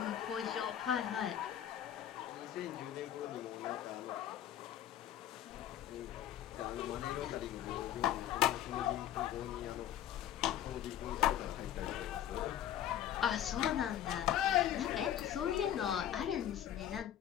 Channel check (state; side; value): quieter; right; 11.2 dB